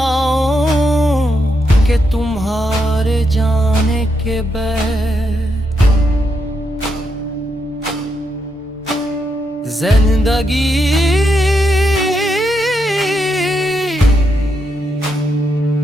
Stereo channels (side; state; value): both; normal; correlation 0.81